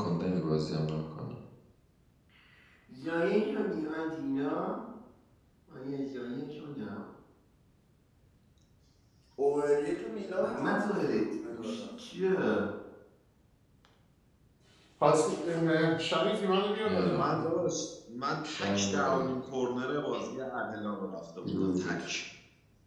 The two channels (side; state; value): both; identical; correlation 1.00